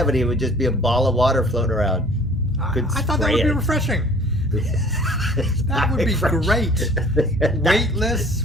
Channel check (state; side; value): normal; both; correlation 0.51